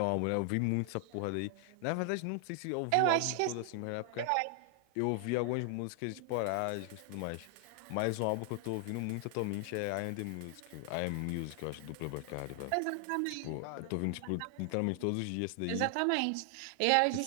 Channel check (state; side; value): different; both; correlation 0.00